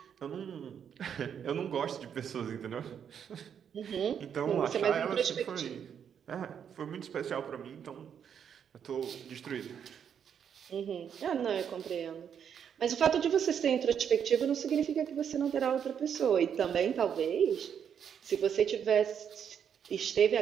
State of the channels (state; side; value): quieter; left; 8.1 dB